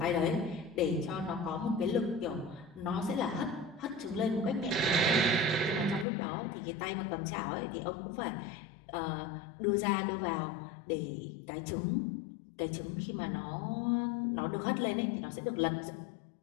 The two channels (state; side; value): drops out; right; at 6.1 s